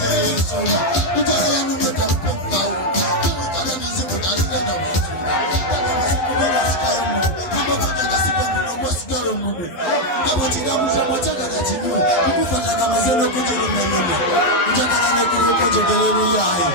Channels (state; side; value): late; right; 11 ms